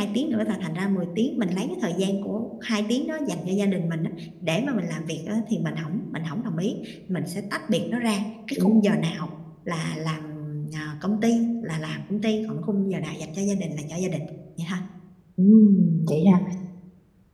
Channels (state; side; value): identical; both; correlation 1.00